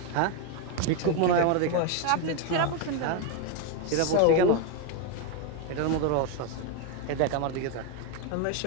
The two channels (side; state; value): both; different; correlation 0.02